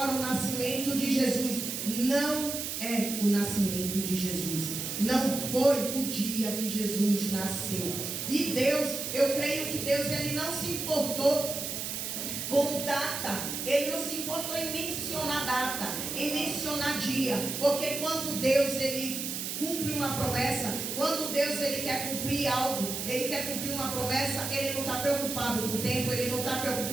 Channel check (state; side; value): noise; right; hiss, 4 dB below the sound